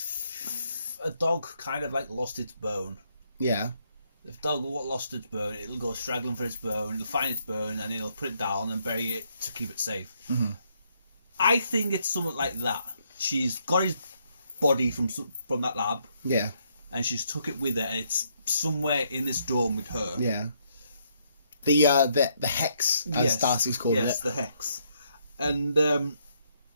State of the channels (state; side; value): inverted; both; correlation -0.73